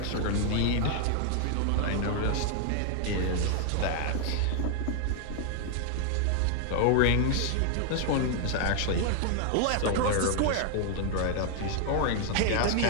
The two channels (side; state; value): both; different; correlation 0.00